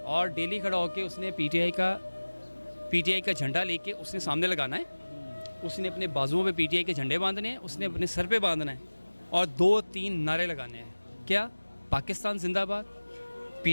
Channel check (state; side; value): inverted; both; correlation -1.00